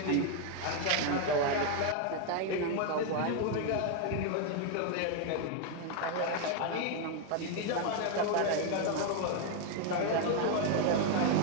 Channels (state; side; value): different; both; correlation 0.01